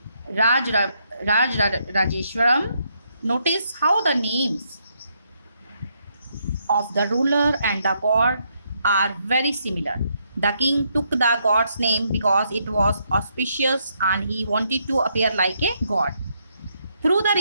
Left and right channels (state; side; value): inverted; both; correlation -0.76